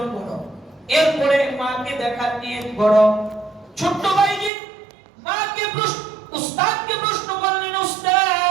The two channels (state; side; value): drops out; left; at 4.5 s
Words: করো, এরপরে মাকে দেখার নিয়ত করো। ছোট্ট বাইজিদ মাকে উস্তাদকে প্রশ্ন করলেন,